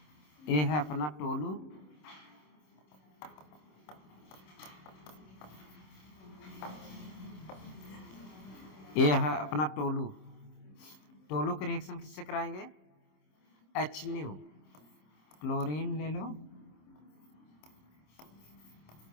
ये है अपना टोलू, ये है अपना टोलू। टोलू के रिएक्शन किससे कराएंगे, H न्यू, क्लोरीन ले लो,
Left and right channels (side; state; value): right; late; 26 ms